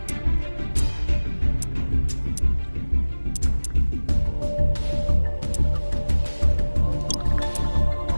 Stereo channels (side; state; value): both; inverted; correlation -1.00